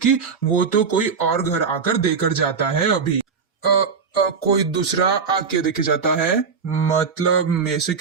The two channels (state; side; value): quieter; left; 5.7 dB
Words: वो तो कोई और घर आकर देकर जाता है। अभी कोई दूसरा आके देके जाता है? मतलब मेरे से